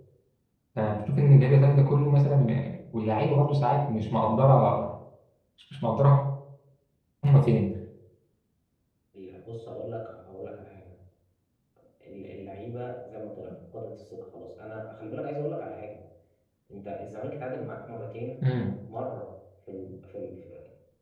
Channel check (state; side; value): identical; both; correlation 1.00